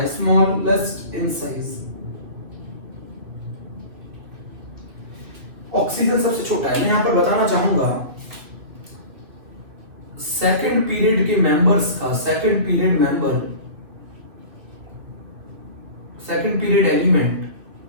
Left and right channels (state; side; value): late; left; 2.4 ms